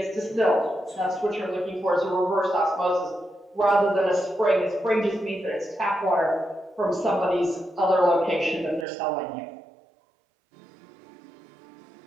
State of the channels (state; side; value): drops out; left; at 8.8 s